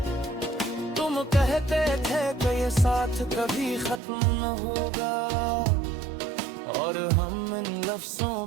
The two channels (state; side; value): drops out; left; at 4.0 s